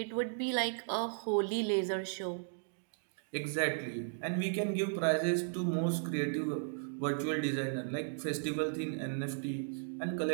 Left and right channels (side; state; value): left; silent; digital silence